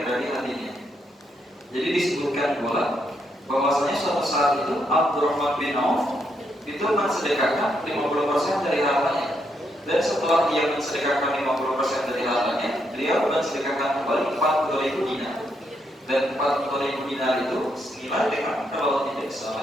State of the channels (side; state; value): both; normal; correlation 0.78